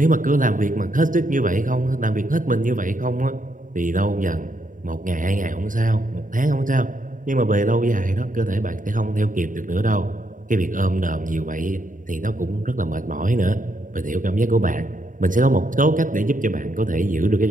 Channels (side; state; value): left; late; 0.39 ms